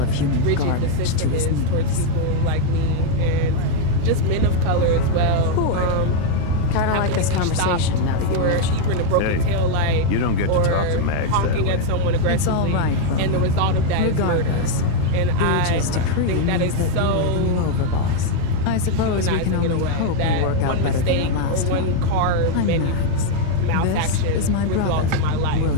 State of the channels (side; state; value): both; different; correlation 0.01